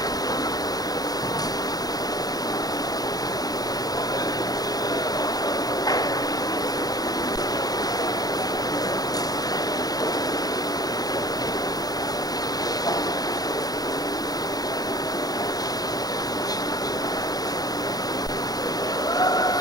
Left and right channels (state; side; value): late; right; 0.18 ms